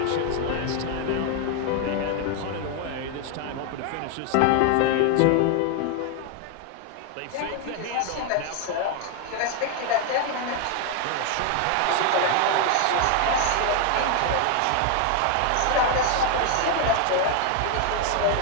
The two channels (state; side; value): different; both; correlation 0.00